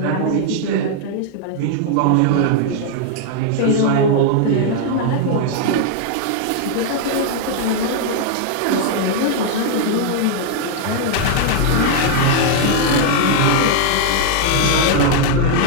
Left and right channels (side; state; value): both; different; correlation 0.00